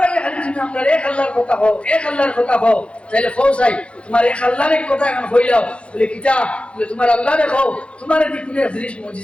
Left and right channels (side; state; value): right; late; 0.060 ms